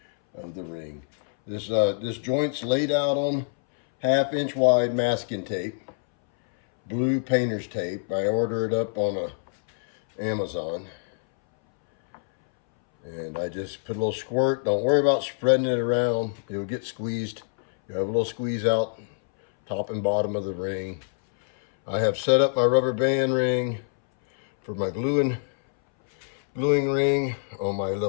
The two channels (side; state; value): right; silent; 61 dB below the other